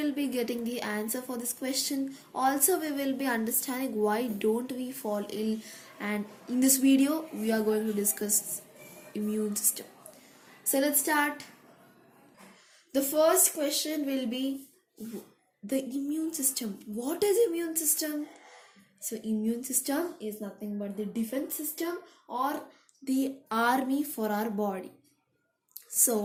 be getting the answer for this question. Also we will be understanding why don't we fall ill, and in this video we are going to discuss immune system. So let's start. The first question will be the immune system. What is immune system? So immune system is nothing but the defense system or the army for our body.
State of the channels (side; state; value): both; identical; correlation 1.00